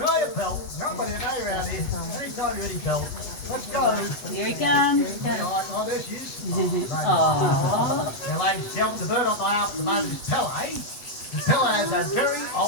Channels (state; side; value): late; right; 8.1 ms